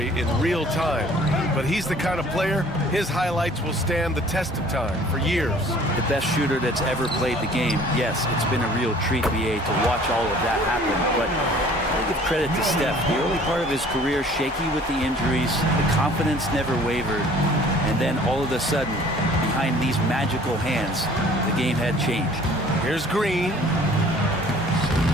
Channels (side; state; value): both; normal; correlation 0.52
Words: in real time. But he's the kind of player, his highlights will stand the test of time for years. The best shooter that's ever played the game. Yes, it's been a real treat, BA, to watch all of that happen. But I give credit to Steph. The early part of his career, shaky with the injuries. The confidence never wavered. And then all of a sudden, behind these magical hands, the game had changed. Here's Green.